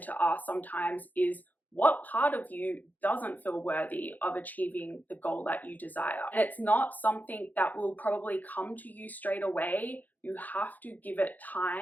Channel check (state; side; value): late; right; 0.082 ms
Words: to ask sometimes is, what part of you doesn't feel worthy of achieving the goal that you desire? And it's not something that will probably come to you straight away. You have to give it